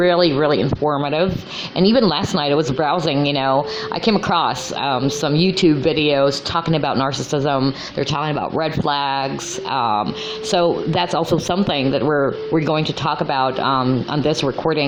really informative. And even last night I was browsing, you know, I came across some YouTube videos talking about narcissism. They're talking about red flags. So that's also something that we're going to talk about on this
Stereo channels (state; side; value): identical; both; correlation 1.00